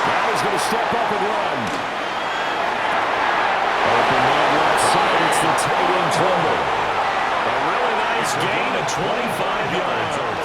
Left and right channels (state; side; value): identical; both; correlation 1.00